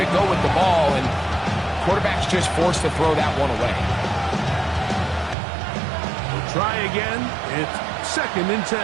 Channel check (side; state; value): left; drops out; at 5.4 s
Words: to go with the ball, and quarterback's just forced to throw that one away. Try again. It's 2nd and 10.